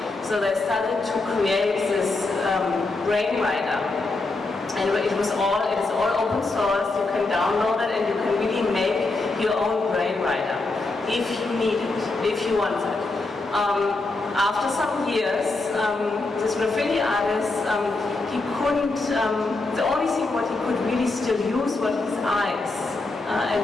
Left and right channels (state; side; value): quieter; right; 3.3 dB